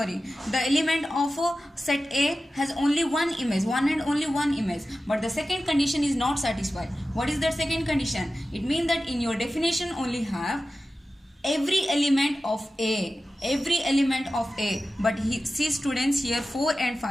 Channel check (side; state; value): both; normal; correlation 0.94